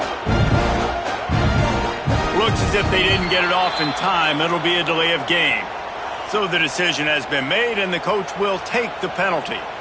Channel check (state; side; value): identical; both; correlation 1.00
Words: If they didn't get it off in time, it'll be a delay of game. So the decision has been made, and the coach will take the penalty.